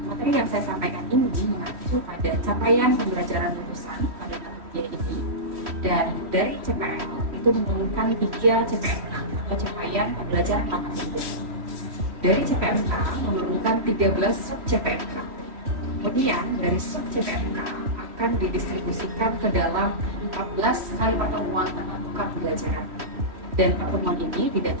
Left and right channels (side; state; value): left; late; 3.1 ms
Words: Materi yang saya sampaikan ini mengacu pada capaian pembelajaran lulusan pada mata kuliah ini, dan dari CPL itu menurunkan 3 CPMK atau capaian pembelajaran mata kuliah. Dari CPMK menurunkan 13 sub CPMK. Kemudian dari sub CPMK akan didistribusikan ke dalam 14 kali pertemuan tatap muka pembelajaran. Dan pertemuan ini tidak